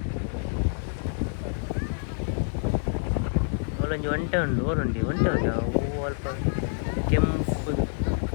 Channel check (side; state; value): right; silent; digital silence